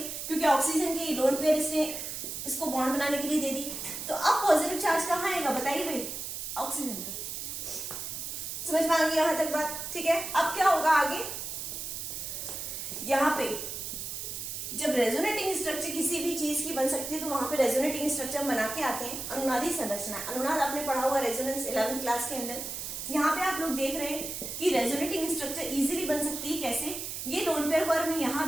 क्योंकि ऑक्सीजन की लोन पेयर इसने इसको बॉन्ड बनाने के लिए दे दी। तो अब पॉजिटिव चार्ज कहाँ आएगा, बताइए भाई, ऑक्सीजन पे। समझ में आ गई यहां तक बात, ठीक है। अब क्या होगा आगे, यहाँ पे जब रेजोनेटिंग स्ट्रक्चर किसी भी चीज की बन सकती है, तो वहां पे रेजोनेटिंग स्ट्रक्चर बना के आते हैं अनुनादी संरचना। अनुनाद आपने पढ़ा हुआ रेजोनेंस 11th क्लास के अंदर। यहाँ पे आप लोग देख रहे हैं कि रेजोनेटिंग स्ट्रक्चर इजीली बन सकती है। कैसे, ये लोन पेयर को अगर मैं यहाँ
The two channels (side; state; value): right; noise; hiss, 6 dB below the sound